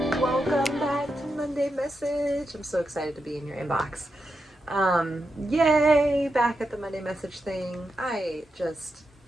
Welcome back to Monday Message. I'm so excited to be in your inbox. Yay, back at the Monday Message thing. I just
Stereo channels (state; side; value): normal; both; correlation 0.87